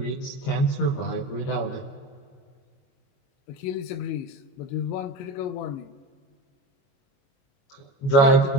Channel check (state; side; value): late; right; 22 ms